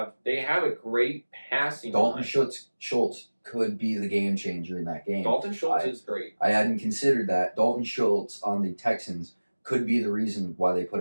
have a great passing Dalton line. Schultz could be the game changer in that game. Dalton Schultz is great. I hadn't considered that. Dalton Schultz on the Texans could be the reason why they put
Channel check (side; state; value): both; inverted; correlation -1.00